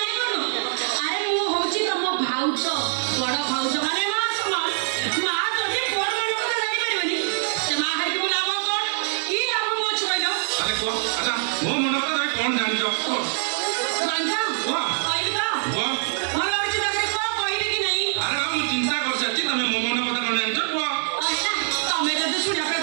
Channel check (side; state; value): left; silent; 58 dB below the other